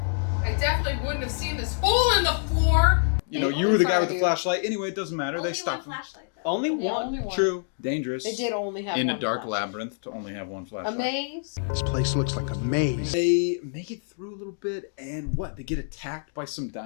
I definitely wouldn't have seen this hole in the floor. They You only were the guy with the you. flashlight. Anyway, it doesn't matter. Only They one stopped. flashlight though. Only Yeah, one? only one. True. Dangerous. It did only have in one a dark flashlight. labyrinth to only have one A flashlight. maze? This place looks like a maze. They make it through a little bit, and what? They get attacked by some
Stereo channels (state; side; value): silent; right; digital silence